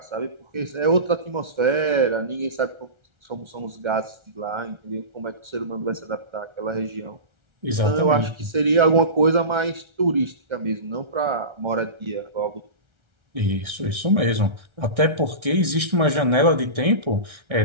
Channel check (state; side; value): late; left; 1.3 ms